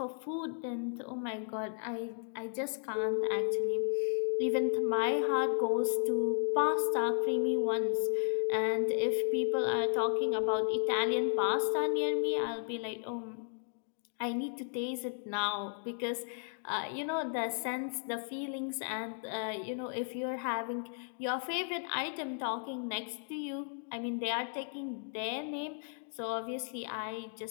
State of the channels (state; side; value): silent; right; 55 dB below the other